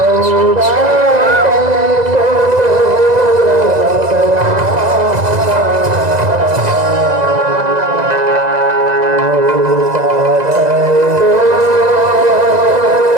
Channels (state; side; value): late; left; 2.0 ms